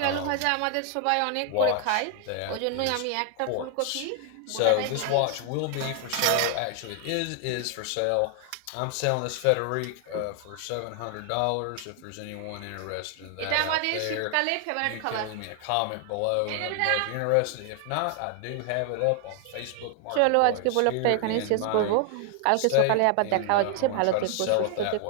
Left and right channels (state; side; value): different; both; correlation 0.00